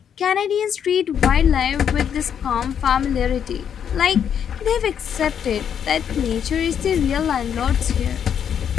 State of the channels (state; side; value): quieter; right; 8.4 dB